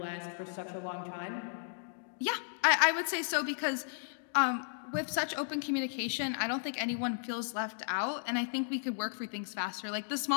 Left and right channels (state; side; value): silent; right; digital silence